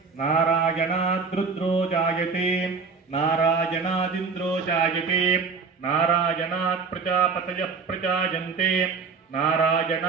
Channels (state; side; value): quieter; left; 5.0 dB